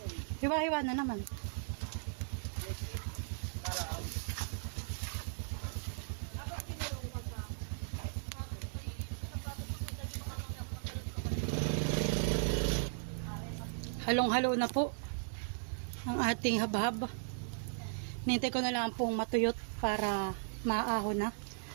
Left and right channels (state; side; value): silent; left; digital silence